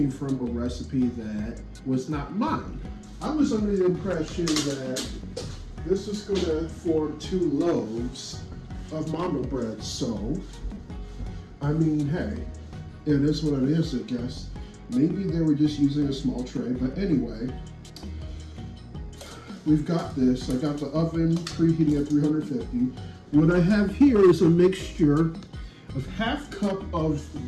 from a recipe that was not mine. I was under the impression that this is going to form 2 loaves of Mandel bread. So, I mean, hey, it is what it is, I guess. Maybe they were just using a small tray, but anyway. We've got this. I got the oven preheating at 350. What I have here is a mixture of half cup of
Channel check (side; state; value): both; identical; correlation 1.00